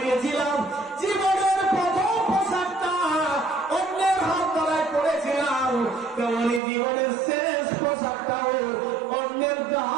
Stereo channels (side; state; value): left; drops out; at 6.6 s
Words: জীবনের প্রথম পোশাকটা অন্যের হাত দ্বারায় পড়েছিলাম, তেমনি জীবনের শেষ পোশাকটাও অন্যের